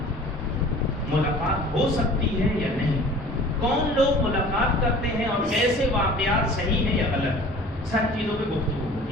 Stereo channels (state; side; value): normal; both; correlation 0.46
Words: ملاقات ہو سکتی ہے یا نہیں، کون لوگ ملاقات کرتے ہیں اور کیسے واقعات صحیح ہیں یا غلط، سب چیزوں پہ گفتگو